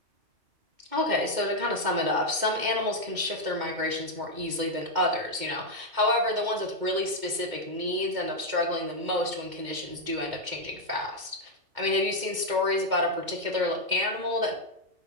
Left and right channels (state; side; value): late; left; 2.2 ms